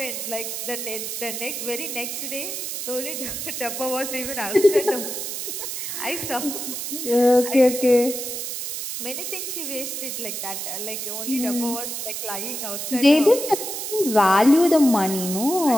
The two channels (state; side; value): noise; right; hiss, 5 dB below the sound